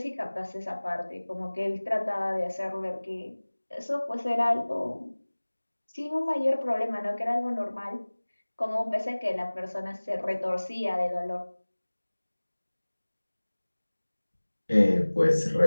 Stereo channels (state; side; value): inverted; both; correlation -1.00